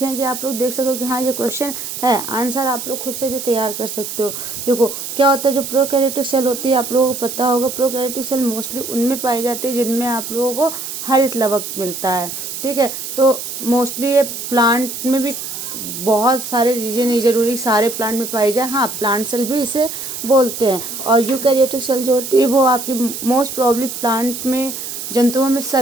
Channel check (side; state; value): right; noise; hiss, 7 dB below the sound